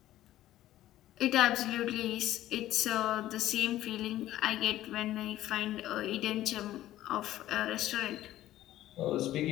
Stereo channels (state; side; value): quieter; right; 14.2 dB